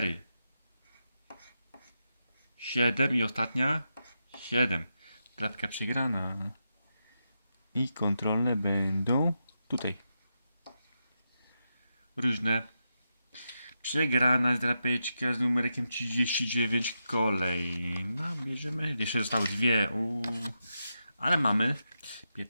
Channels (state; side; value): inverted; both; correlation -0.87